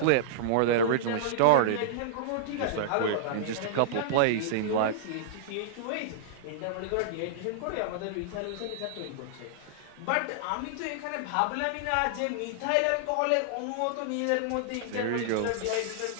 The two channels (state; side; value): different; both; correlation -0.02